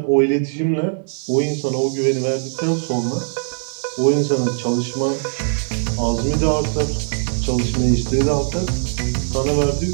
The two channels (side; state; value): left; silent; digital silence